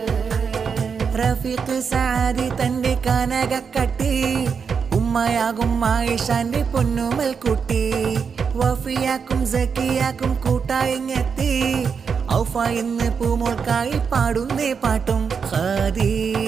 റഫീഖ് സാദി തന്റെ കനകക്കട്ടി ഉമ്മയാകും ആയിഷാന്റെ പൊന്നുമൽ കുട്ടി വഫിയാക്കും സക്കിയാക്കും കൂട്ടായിങ്ങെത്തി ഔഫ ഇന്ന് പൂമോൾക്കായി പാടുന്നേ പാട്ടും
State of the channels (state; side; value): quieter; left; 6.1 dB